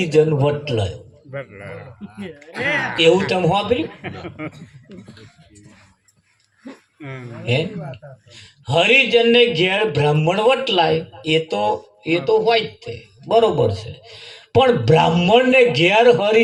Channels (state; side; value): identical; both; correlation 1.00